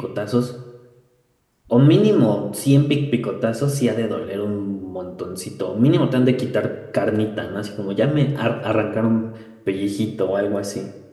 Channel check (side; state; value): both; identical; correlation 1.00